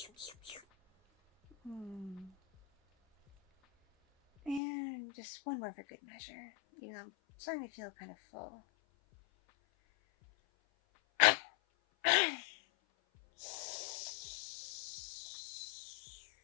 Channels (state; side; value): drops out; right; at 4.6 s